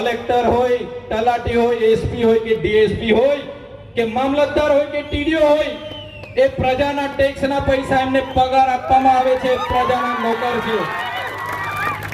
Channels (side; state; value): both; identical; correlation 1.00